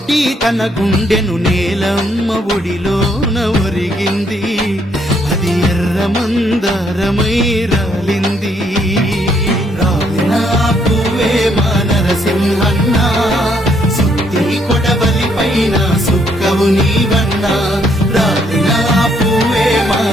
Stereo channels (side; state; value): both; normal; correlation 0.71